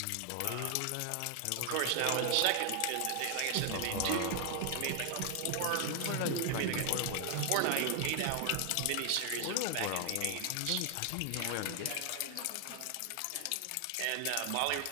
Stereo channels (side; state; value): both; different; correlation 0.00